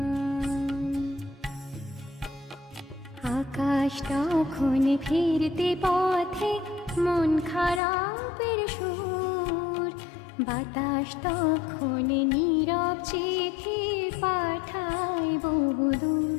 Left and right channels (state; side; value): drops out; right; at 7.8 s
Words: আকাশ তখন ফিরতে পথে মন খারাপের সুর, বাতাস তখন নীরব চিঠি পাঠায় বহুদূর